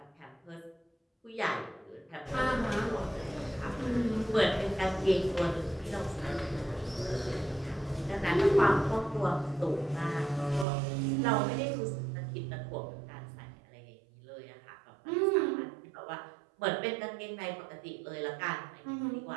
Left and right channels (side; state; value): left; drops out; at 10.7 s